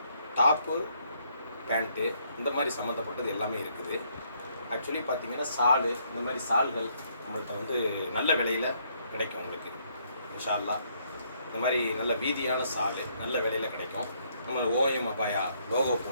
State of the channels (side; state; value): both; inverted; correlation -0.70